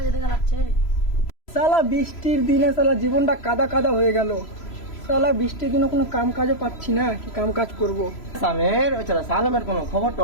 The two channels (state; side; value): late; right; 3.0 ms